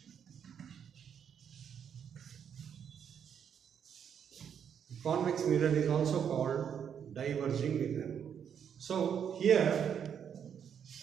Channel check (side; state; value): left; quieter; 8.1 dB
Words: Convex mirror is also called diverging mirror. So here